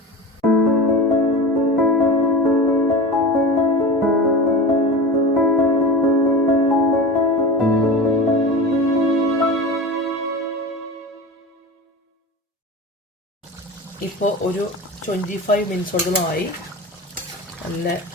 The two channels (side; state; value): both; normal; correlation 0.30